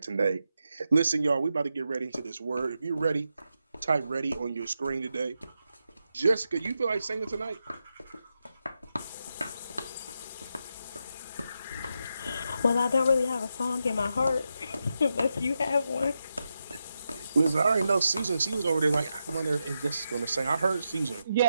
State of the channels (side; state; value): both; inverted; correlation -0.86